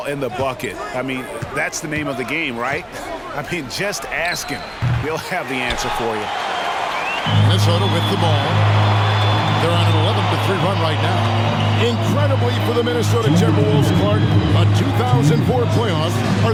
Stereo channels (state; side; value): identical; both; correlation 1.00